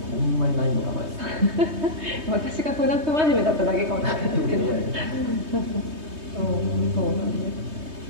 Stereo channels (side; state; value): left; late; 3.2 ms